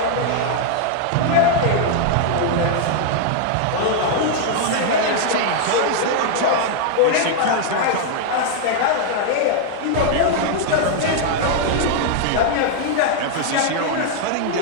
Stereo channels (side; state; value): both; different; correlation 0.00